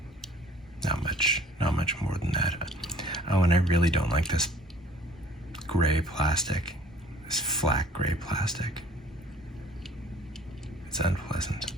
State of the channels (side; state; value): both; normal; correlation 0.53